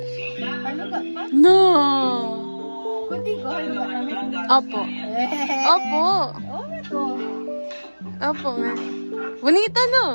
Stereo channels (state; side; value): inverted; both; correlation -1.00